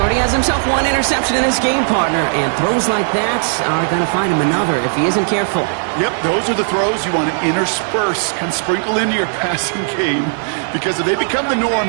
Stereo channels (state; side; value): silent; left; digital silence